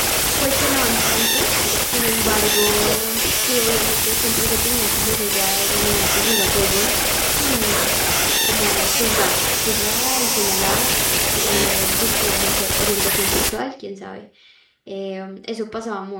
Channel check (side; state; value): both; identical; correlation 1.00